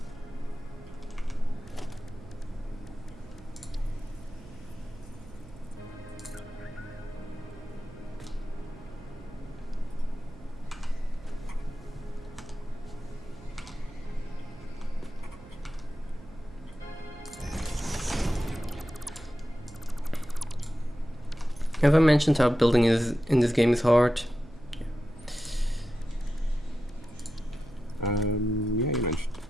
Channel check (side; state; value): right; noise; hum, 19 dB below the sound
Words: Have I mentioned how building is in this game is hard? Yeah, you mentioned.